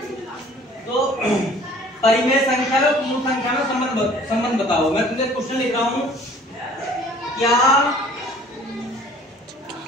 तो परिमेय संख्या और पूर्ण संख्या में संबंध बताओ। मैं तुझे क्वेश्चन लिख रहा हूं, क्या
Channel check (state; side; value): normal; both; correlation 0.52